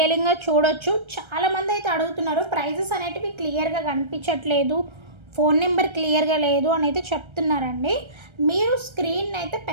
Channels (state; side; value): late; left; 1.3 ms